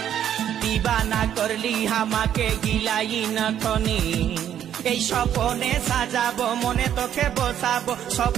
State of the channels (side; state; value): left; quieter; 10.1 dB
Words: দিবানা করলি হামাকে গিলাই নখনি। এই স্বপনে সাজাবো মনে তোকে বসাবো,